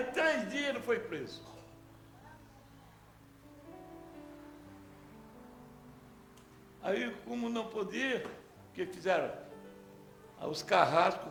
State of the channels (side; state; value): both; identical; correlation 1.00